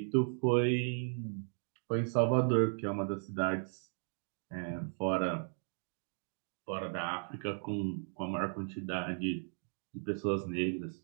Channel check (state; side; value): silent; left; digital silence